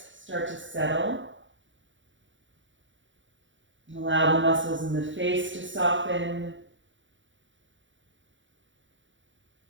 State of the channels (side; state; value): left; late; 0.55 ms